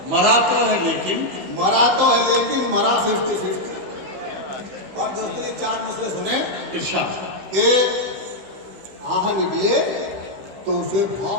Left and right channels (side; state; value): left; late; 15 ms